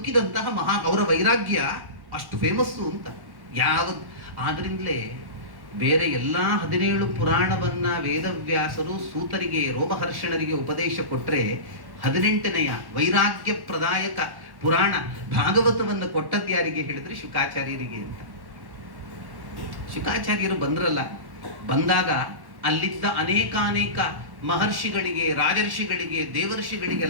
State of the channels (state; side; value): late; left; 1.1 ms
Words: ಅವರ ವೈರಾಗ್ಯ ಅಷ್ಟು ಫೇಮಸ್ಸು ಅಂತ. ಆದ್ರಿಂದಲೇ ಬೇರೆ ಎಲ್ಲಾ 17 ಪುರಾಣವನ್ನ ವೇದವ್ಯಾಸರು ಸೂತರಿಗೆ, ರೋಮಹರ್ಷಣರಿಗೆ ಉಪದೇಶ ಕೊಟ್ರೆ, 18ನೆಯ ವೈರಾಗ್ಯ ಪ್ರದಾಯಕ ಪುರಾಣ ಭಾಗವತವನ್ನು ಕೊಟ್ಟದ್ದು ಯಾರಿಗೆ ಹೇಳಿದ್ರೆ ಶುಕಾಚಾರ್ಯರಿಗೆ ಅಂತ. ಶುಕಾಚಾರ್ಯರು ಬಂದ್ರಲ್ಲ, ಬಂದಾಗ ಅಲ್ಲಿದ್ದ ಅನೇಕ ಮಹರ್ಷಿಗಳಿಗೆ, ರಾಜರ್ಷಿಗಳಿಗೆ,